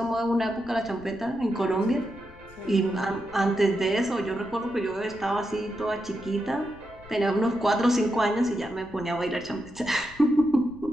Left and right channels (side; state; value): left; noise; rumble, 21 dB below the sound